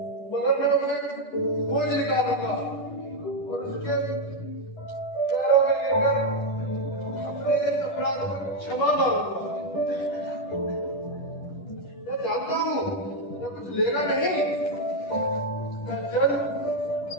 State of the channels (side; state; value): right; late; 10 ms